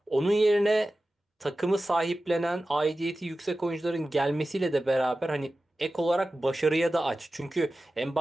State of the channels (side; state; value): both; normal; correlation 0.95